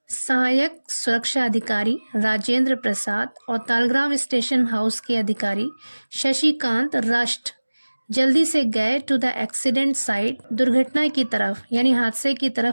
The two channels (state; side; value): inverted; both; correlation -1.00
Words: सहायक सुरक्षा अधिकारी राजेंद्र प्रसाद और तालग्राम स्टेशन हाउस के अधिकारी शशिकांत रश्ट जल्दी से गए टू द एक्सीडेंट साइट, दुर्घटना की तरफ यानी हादसे की